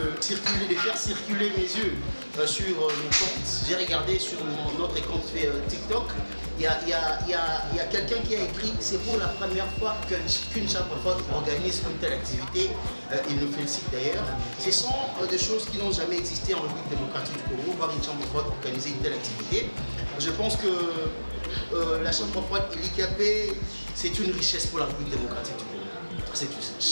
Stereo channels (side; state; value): both; inverted; correlation -1.00